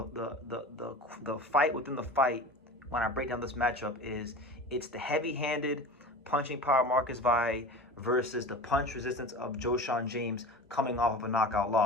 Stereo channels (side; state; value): both; normal; correlation 0.34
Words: fight within the fight, when I break down this matchup, it's the heavy-handed punching power of Marques Valle versus the punch resistance of Joeshon James coming off of a knockout